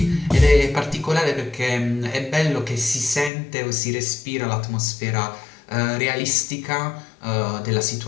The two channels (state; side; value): drops out; right; at 3.3 s